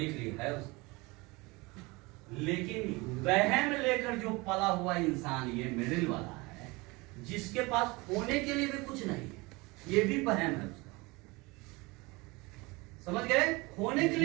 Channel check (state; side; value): quieter; left; 24.4 dB